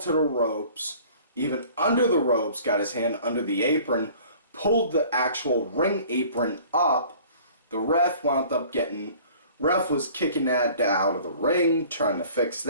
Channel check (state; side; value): inverted; both; correlation -0.49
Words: to the ropes, even under the ropes, got his hand under the apron, pulled the actual ring apron up. The ref was kicking that out of the ring, trying to fix